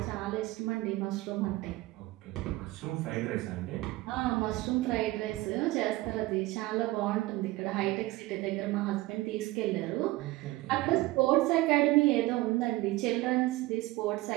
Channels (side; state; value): left; quieter; 19.1 dB